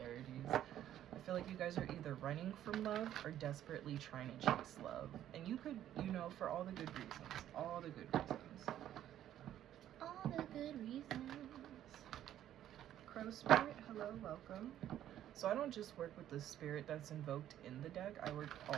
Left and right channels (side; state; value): left; quieter; 11.6 dB